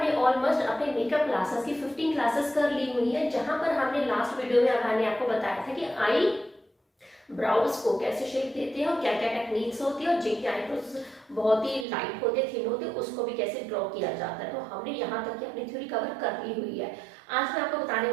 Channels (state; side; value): drops out; left; at 11.9 s